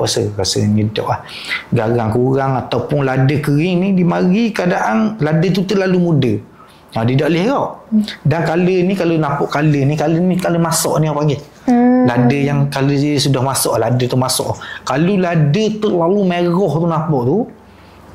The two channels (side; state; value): both; identical; correlation 1.00